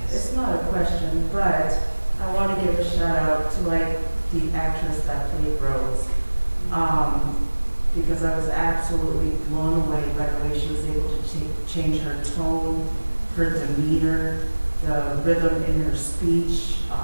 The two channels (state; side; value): inverted; both; correlation -1.00